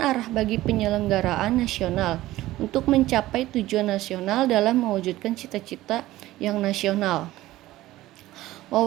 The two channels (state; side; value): quieter; left; 16.3 dB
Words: bagi penyelenggaraan nasional untuk mencapai tujuan nasional dalam mewujudkan cita-cita yang nasional.